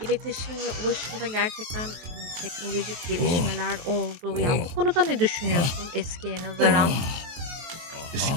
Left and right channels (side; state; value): left; late; 24 ms